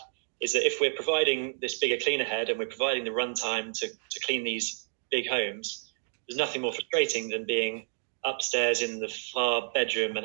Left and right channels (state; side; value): silent; left; digital silence